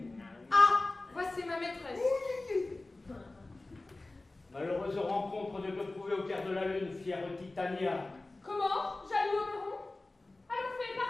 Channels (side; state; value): right; quieter; 3.0 dB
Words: Ah! Voici ma maîtresse. Malheureuse rencontre de te trouver au cœur de la lune, fière Titania. Comment? Jaloux Oberon? Allons, fée,